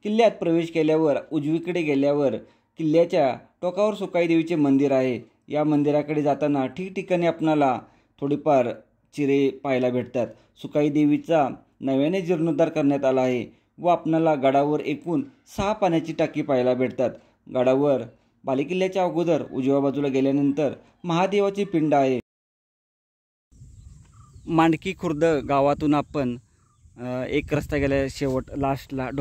किल्ल्यात प्रवेश केल्यावर उजवीकडे गेल्यावर किल्ल्याच्या टोकावर सुकाई देवीचे मंदिर आहे। या मंदिराकडे जाताना ठिकठिकाणी आपल्याला थोडीफार चिरे पाहायला भेटतात। सुकाई देवीचा नव्याने जीर्णोद्धार करण्यात आला आहे व आपल्याला गडावर एकूण 6 पाण्याची टाकी पाहायला भेटतात। गडावर बालेकिल्ल्याच्या अगोदर उजव्या बाजूला गेल्यानंतर महादेवाची पिंड आहे। मांडकी खुर्द गावातून आपण एक रस्ता गेला शेवट लास्टला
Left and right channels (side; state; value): both; identical; correlation 1.00